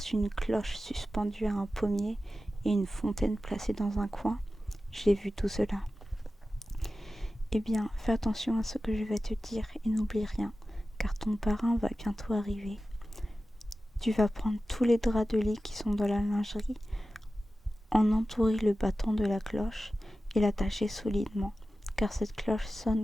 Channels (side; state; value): both; normal; correlation 0.94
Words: une cloche suspendue à un pommier et une fontaine placée dans un coin? J'ai vu tout cela. Eh bien, fais attention à ce que je vais te dire et n'oublie rien, car ton parrain va bientôt arriver. Tu vas prendre tous les draps de lit qui sont dans la lingerie, en entourer le bâton de la cloche et l'attacher solidement, car cette cloche sonne